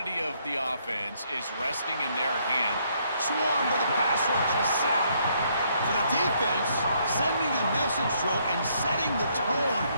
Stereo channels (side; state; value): both; inverted; correlation -0.70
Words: of the offense is resting in their hand. Swarm with a pass rush, a sack. For the defense, sending a message through and setting the tone